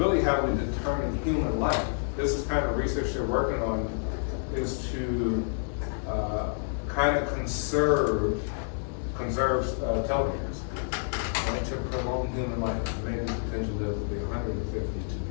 how we determine human life. This is kind of research they're working on, is to kind of conserve telomeres, right, to prolong human life. Maybe potentially live to be 150 to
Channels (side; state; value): right; silent; 59 dB below the other